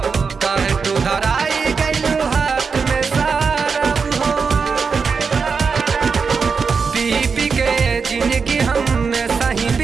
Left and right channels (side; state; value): left; quieter; 5.4 dB